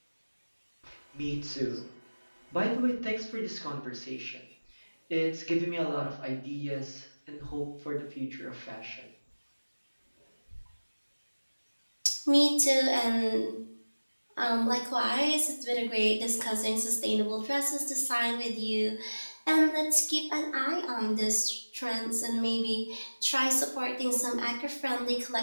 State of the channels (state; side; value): inverted; both; correlation -1.00